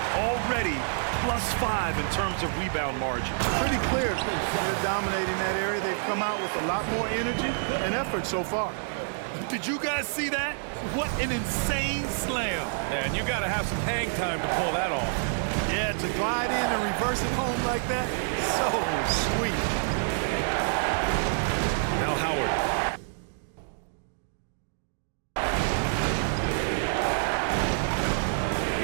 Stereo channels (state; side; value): silent; left; digital silence